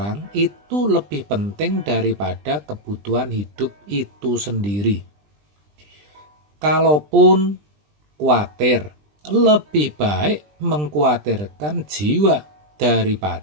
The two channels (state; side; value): late; left; 20 ms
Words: itu lebih penting daripada kebutuhan hidup itu sendiri. Kalaupun khawatir, lebih baik mengkhawatirkan jiwa